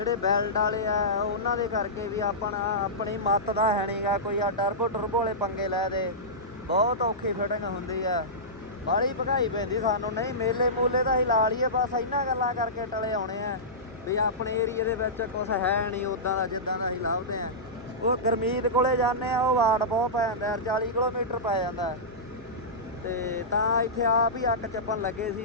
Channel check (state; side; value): normal; both; correlation -0.16